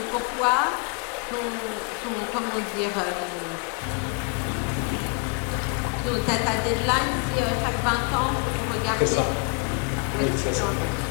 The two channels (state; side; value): quieter; right; 34.1 dB